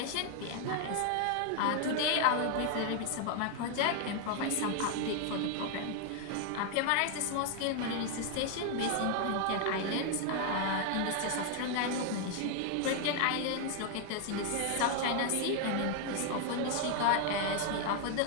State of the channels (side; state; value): both; different; correlation 0.00